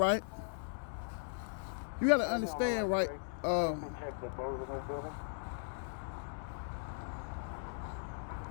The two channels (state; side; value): silent; right; digital silence